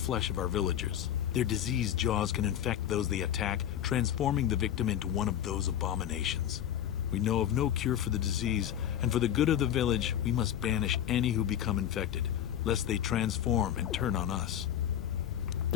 of our villagers. Their diseased jaws can infect those they attack, transforming the victim into one of those abominations. We know of no cure for the disease, and for the good of the village, we must banish any who become infected, lest they transform and turn on us.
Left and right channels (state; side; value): quieter; right; 10.5 dB